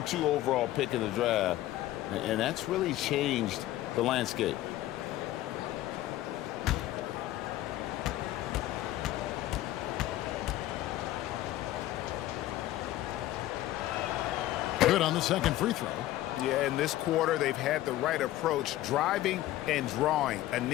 overall pick in the draft, and that's really changed the landscape. Good on the second free throw. Yeah, in this quarter, they've had the right approach, driving and drawing,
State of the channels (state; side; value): quieter; right; 14.9 dB